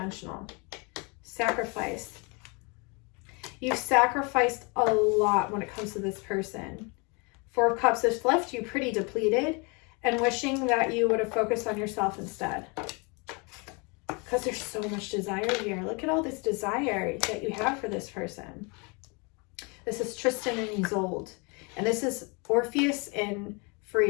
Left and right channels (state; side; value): quieter; right; 31.0 dB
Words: Sacrifice. You've sacrificed a lot when it comes to this person. 4 of Cups has left you pretty depleted and wishing that you would have focused on yourself instead. Because there's so much desire here. Look at all this desire that you have for this person. This is Tristan and Isolde. And this is Orpheus and